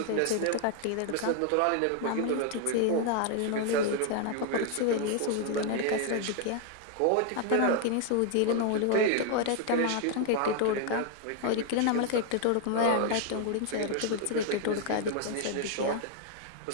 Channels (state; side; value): different; both; correlation 0.00